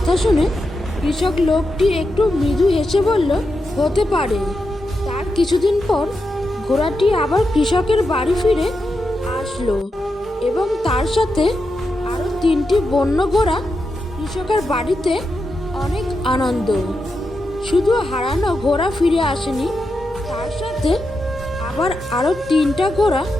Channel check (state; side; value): normal; both; correlation 0.87